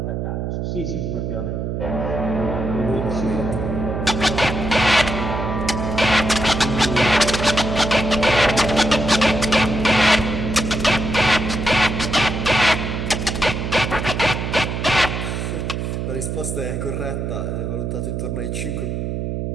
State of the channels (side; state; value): right; noise; hum, 3 dB below the sound